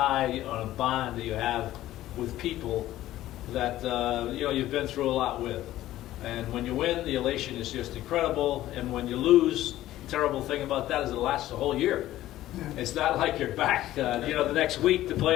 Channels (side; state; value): right; quieter; 14.5 dB